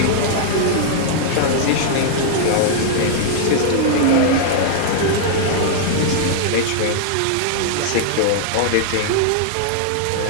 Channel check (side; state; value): both; different; correlation -0.01